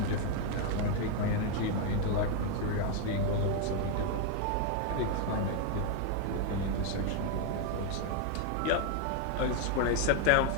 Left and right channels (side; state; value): both; different; correlation 0.01